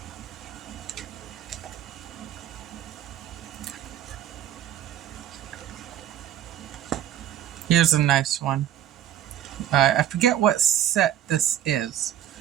Here's a nice one. I forget what set this is.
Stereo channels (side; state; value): left; quieter; 11.3 dB